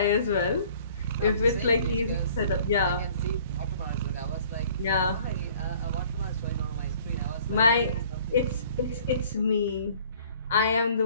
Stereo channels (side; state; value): both; inverted; correlation -0.53